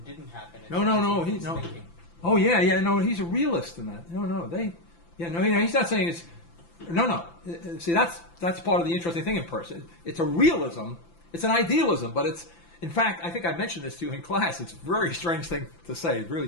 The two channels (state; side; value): late; right; 5.9 ms